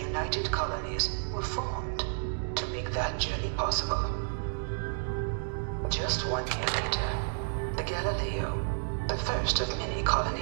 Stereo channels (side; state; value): left; silent; digital silence